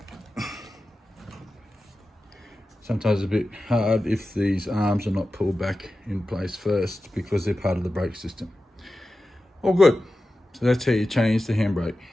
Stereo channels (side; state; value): both; normal; correlation 0.93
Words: Sometimes a bit hard if these arms are not pulled back in place first because they're part of the brake system. All good. So that's how you change the handbrake